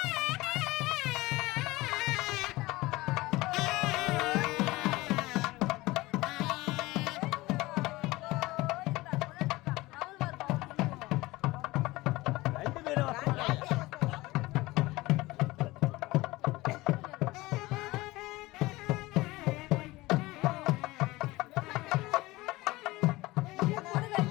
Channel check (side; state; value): right; quieter; 20.1 dB